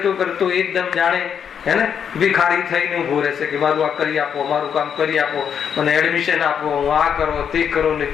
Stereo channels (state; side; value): quieter; right; 7.8 dB